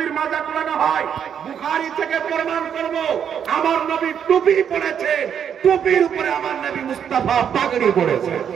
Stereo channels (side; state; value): left; quieter; 8.3 dB